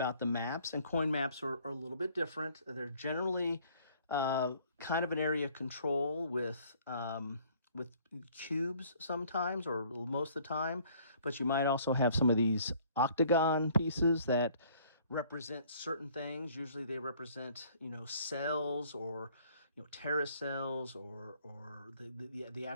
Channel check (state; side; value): inverted; both; correlation -0.58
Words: the maps, and coin maps are a little bit different. They're generally kind of an area of control with cubes sometimes, or most of the time, but you might also have some of these octagon pieces that represent certain things. Usually they represent, cells, or terrorist cells, or the